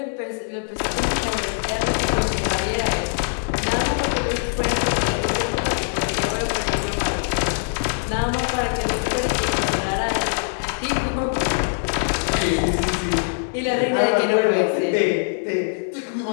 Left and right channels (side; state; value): right; silent; digital silence